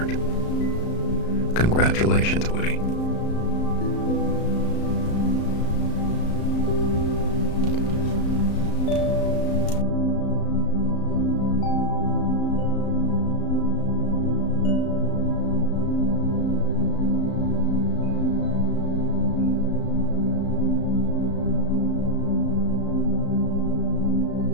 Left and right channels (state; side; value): late; right; 34 ms